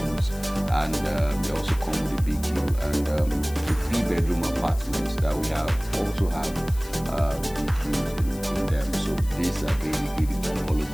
and they also come with a big view. And the 3-bedroom apartments that we have also have big views in them. So these are really the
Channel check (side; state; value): left; noise; hiss, 18 dB below the sound